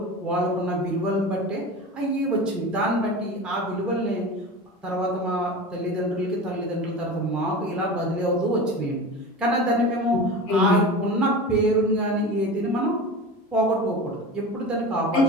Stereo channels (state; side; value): normal; both; correlation 0.31